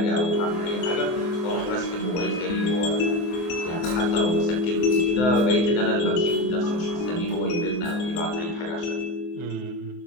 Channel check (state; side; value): late; right; 23 ms